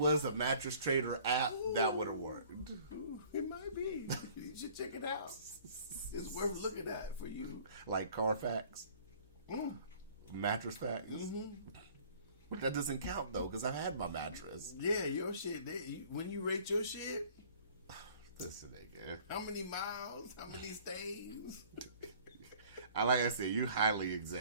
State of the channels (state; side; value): inverted; both; correlation -0.52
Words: a Mattress Trader app, that would have worked. It might be. You should check it out. It's worth looking at for you. Like Carfax, Mattress Facts. But that doesn't count though, because I had my mattress. Yeah, your shit. When you rate your shit, Listen, nigga. how many miles, how many stays? Like I said, you highly